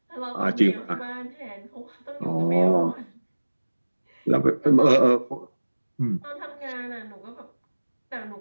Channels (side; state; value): both; inverted; correlation -1.00